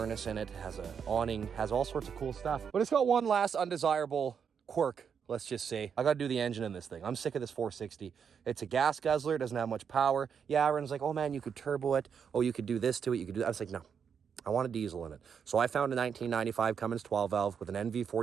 in it, has an awning, has all sorts of cool stuff. But it's got one last undesirable quirk, let's just say. I gotta do the engine in this thing. I'm sick of this 460. It's a gas guzzler, it doesn't have much power. Yeah, everyone's like, oh man, you could turbo it. Oh, you could do this to it, you could do that. I was like, no, I want a diesel in it. So I found a 1995 Cummins 12 valve with an NV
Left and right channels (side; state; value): left; quieter; 7.0 dB